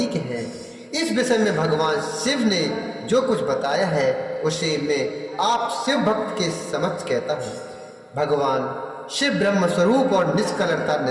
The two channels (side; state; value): both; identical; correlation 1.00